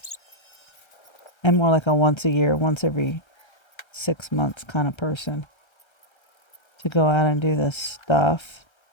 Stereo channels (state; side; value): late; right; 1.3 ms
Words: more like a once a year, once every 6 months kind of person to go out and do this stuff.